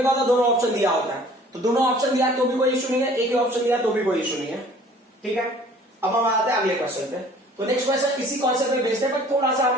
क्या होता है दोनों ऑप्शन दिया होता है, तो दोनों ऑप्शन दिया तो भी कोई इशू नहीं है, एक ही ऑप्शन दिया तो भी कोई इशू नहीं है, ठीक है। अब हम आते हैं अगले क्वेश्चन पे, तो नेक्स्ट क्वेश्चन इसी कॉन्सेप्ट पे बेस्ड है पर थोड़ा सा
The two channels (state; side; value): normal; both; correlation 0.51